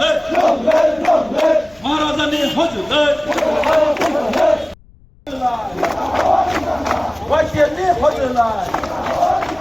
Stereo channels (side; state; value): left; noise; rumble, 28 dB below the sound